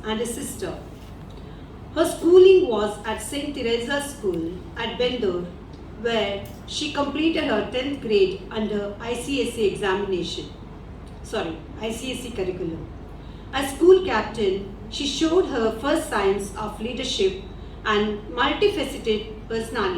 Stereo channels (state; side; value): identical; both; correlation 1.00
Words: and a sister. Her schooling was at St. Teresa's School at Bendur, where she completed her 10th grade under ICSE curriculum. As school captain, she showed her first signs of leadership and multifaceted